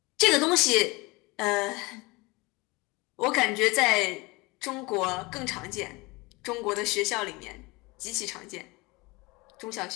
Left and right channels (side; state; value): right; quieter; 24.4 dB